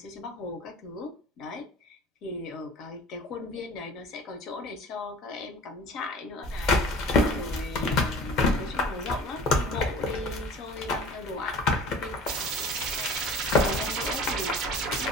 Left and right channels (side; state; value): both; normal; correlation 0.43